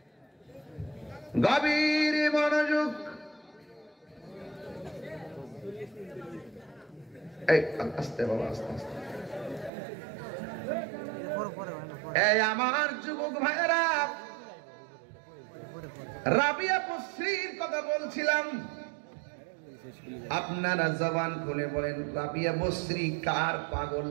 গভীর মনোযোগ। এই আস্তে বাবা আস্তে আস্তে। এই আমার যুবক ভাইরা, রাবিয়া বসরির কথা বলছিলাম, আপনারা জবান খুলে বলেন রাবিয়া বসরি কার পাগল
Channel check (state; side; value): drops out; left; at 9.7 s